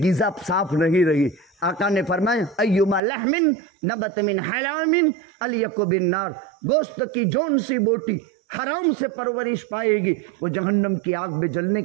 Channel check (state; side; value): drops out; left; at 3.0 s